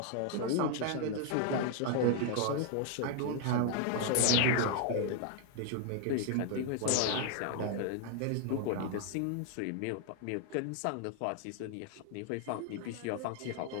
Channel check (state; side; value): different; both; correlation 0.00